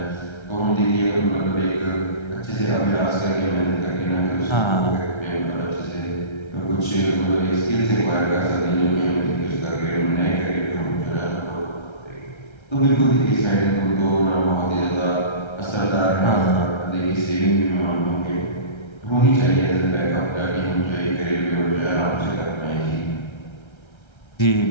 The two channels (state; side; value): late; right; 1.3 ms